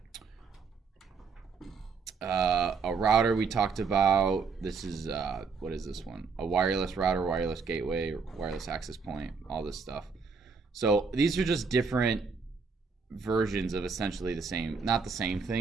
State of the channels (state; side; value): quieter; left; 5.1 dB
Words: A router we talked about. This is, what is this one? A wireless router, wireless gateway, wireless access point, all this stuff. So these are just different versions of essentially the same, not the same